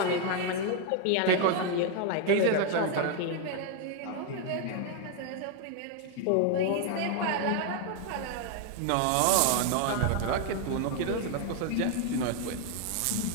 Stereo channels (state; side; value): different; both; correlation 0.00